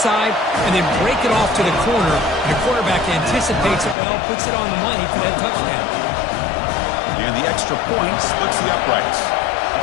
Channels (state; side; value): drops out; right; at 4.0 s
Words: and then break it off to the corner. And the quarterback anticipates it well, puts it on the money for that touchdown. And the extra point splits the uprights.